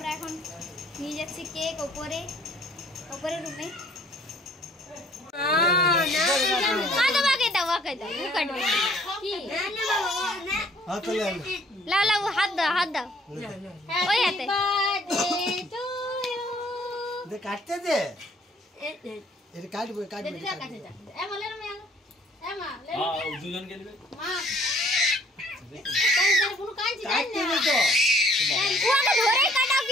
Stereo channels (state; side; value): normal; both; correlation 0.59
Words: এখন নিয়ে যাচ্ছি কেক ওপরে রুমে। হাত দাও ওই হাতে কাটতে দে, এটা কাটবে